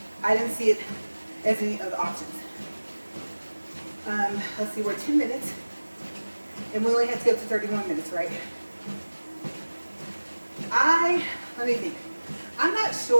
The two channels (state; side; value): inverted; both; correlation -1.00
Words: I didn't see it as any of the options. Let's see, we're 10 minutes, and we only had to go to 31 minutes, right? Let me think. I'm not